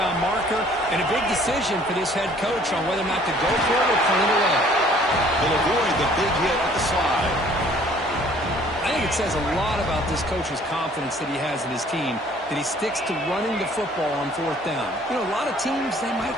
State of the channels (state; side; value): normal; both; correlation 0.56